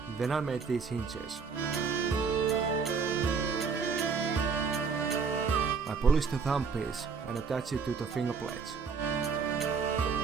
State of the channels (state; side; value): quieter; left; 5.4 dB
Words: Then I made these hinges. I polished the thumb piece and attached it to the fingerplates.